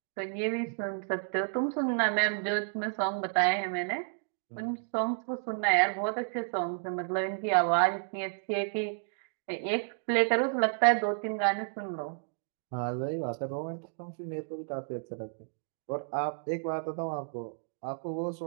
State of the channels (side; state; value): left; silent; digital silence